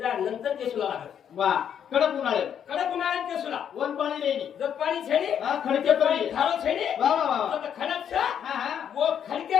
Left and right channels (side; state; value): right; quieter; 8.7 dB